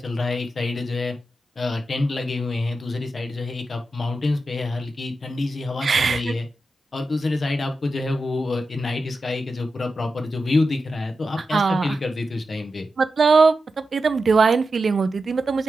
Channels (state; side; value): normal; both; correlation 0.90